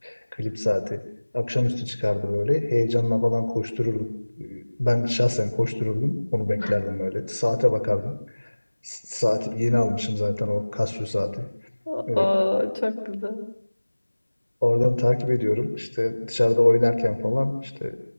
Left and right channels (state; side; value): inverted; both; correlation -1.00